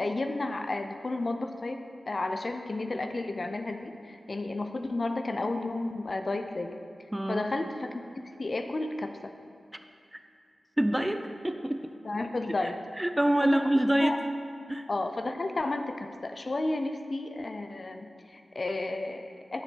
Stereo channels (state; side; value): normal; both; correlation 0.97